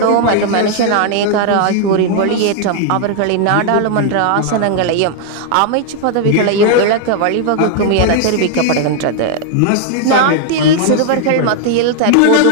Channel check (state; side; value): different; both; correlation 0.00